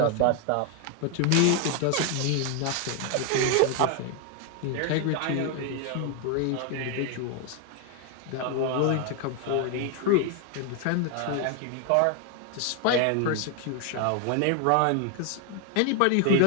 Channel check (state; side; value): different; both; correlation 0.00